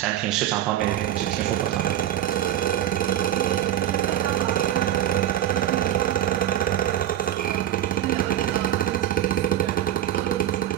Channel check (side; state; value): left; quieter; 11.8 dB